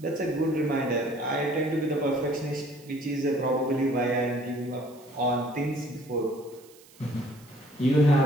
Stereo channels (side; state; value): right; noise; hiss, 25 dB below the sound